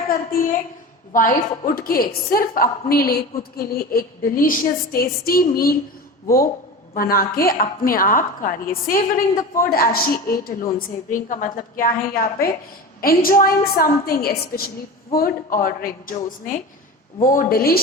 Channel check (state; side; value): normal; both; correlation 0.30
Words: करती है? वाइफ उठ के सिर्फ अपने लिए खुद के लिए एक डिलीशियस टेस्टी मील वो बना के अपने आप खा रही है. Savouring the food as she ate alone. Savouring का मतलब क्या है यहाँ पे? एंजॉइंग समथिंग, स्पेशली फूड और ड्रिंक. जो उसने वो